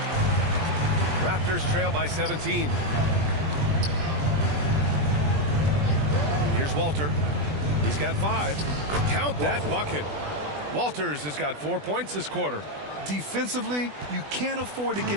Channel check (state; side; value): late; left; 20 ms